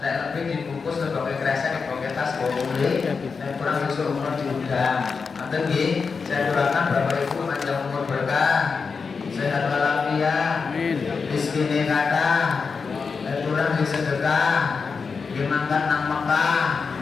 lebih dibungkus sebagai kresek sebagai tas boleh. Nek kurang disuruh umur diundang. Ngoten nggih. Saya doakan Bapak Ibu panjang umur berkah. Sehat walafiat, rezekine kathah, kurang sedekah, dimangkat nang Mekah,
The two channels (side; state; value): right; quieter; 5.2 dB